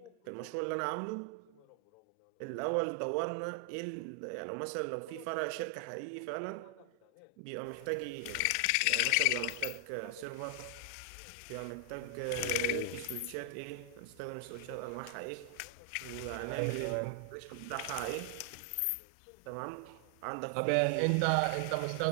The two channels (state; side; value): different; both; correlation 0.00